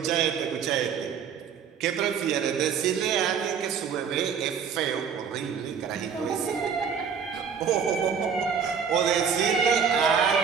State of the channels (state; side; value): quieter; left; 6.9 dB